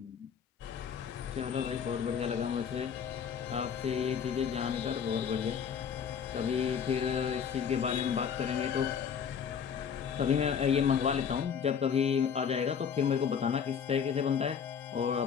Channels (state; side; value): quieter; right; 7.3 dB